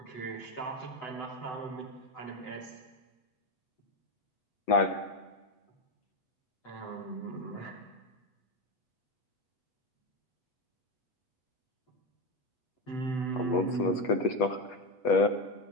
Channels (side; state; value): right; late; 8.3 ms